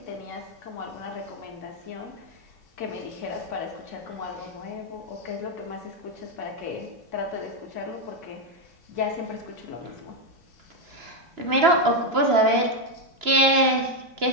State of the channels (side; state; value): left; late; 2.9 ms